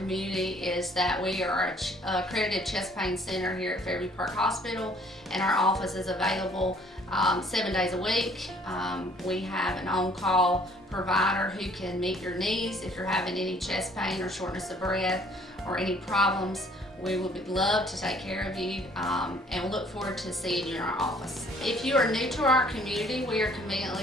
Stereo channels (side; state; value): both; normal; correlation 0.59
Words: is that we are an accredited chest pain center here at Fairview Park Hospital, and our office is available 7 days a week. We have an on-call provider who can meet your needs if you're having any chest pain or shortness of breath or any problems. We would love to take care of you and look forward to seeing you in our office. If you are new to our community, we are